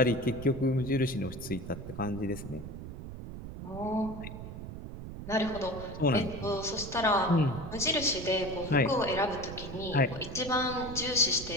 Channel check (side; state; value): right; noise; rumble, 10 dB below the sound